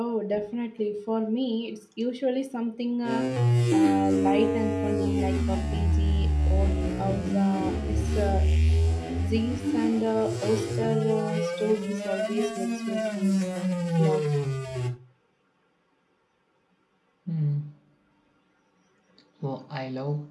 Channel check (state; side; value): identical; both; correlation 1.00